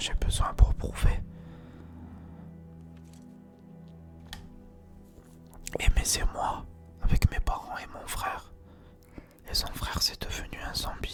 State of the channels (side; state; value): both; identical; correlation 1.00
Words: besoin pour prouver. Mais c'est moi, avec mes parents et mon frère. Et son frère, c'est devenu un